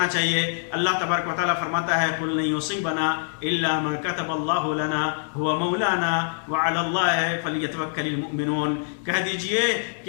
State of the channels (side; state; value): right; silent; 62 dB below the other